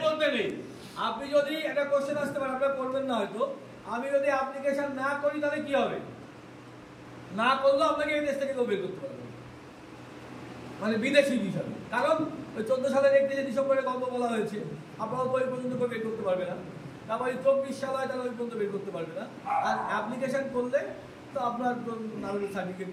মধ্যে নেই। আপনি যদি একটা কোশ্চেন আসতে পারেন, আপনারা করবেন না হয়তো, আমি যদি অ্যাপ্লিকেশন না করি তাহলে কি হবে? না করলেও আপনাকে এই দেশ থেকে কেউ বের করতে পারবে, মানে বিদেশি হিসাবে। কারণ ওই 14 সালের 31 ডিসেম্বরে গল্প বলা হয়েছে, আপনারা তো ওই পর্যন্ত বের করতে পারবে না। তারপরে 24 সাল হয়, তাহলে ওই পর্যন্ত বের করতে পারবে না। আর অ্যাপ্লিকেশন করলে তো আপনার নাগরিক সার্টিফিকেট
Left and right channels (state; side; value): identical; both; correlation 1.00